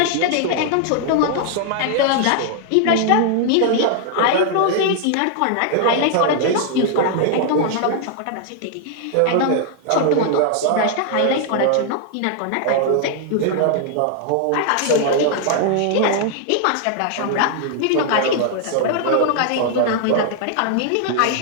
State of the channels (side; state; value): both; different; correlation -0.01